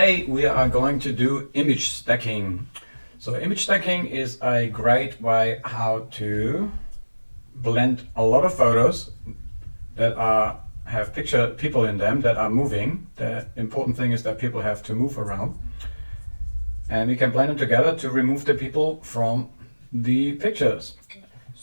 we are going to do image stacking. So image stacking is a great way how to blend a lot of photos that have people in them that are moving. The important thing is that people have to move around. And we can blend them together to remove the people from the pictures.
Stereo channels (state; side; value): inverted; both; correlation -1.00